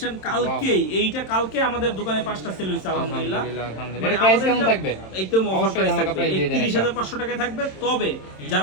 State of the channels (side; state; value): right; late; 27 ms